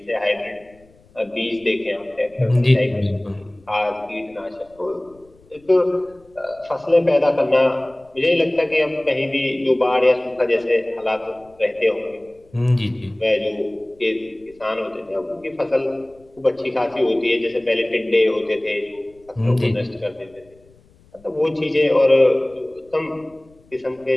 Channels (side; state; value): left; noise; rumble, 29 dB below the sound